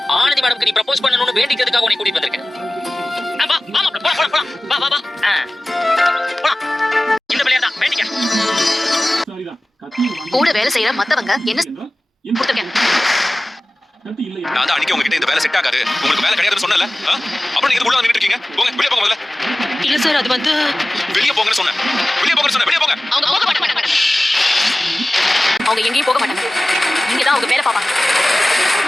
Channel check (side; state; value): both; normal; correlation 0.97